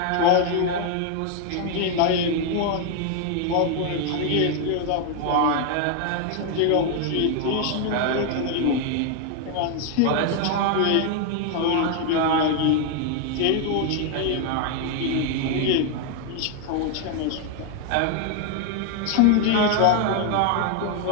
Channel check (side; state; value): both; different; correlation 0.00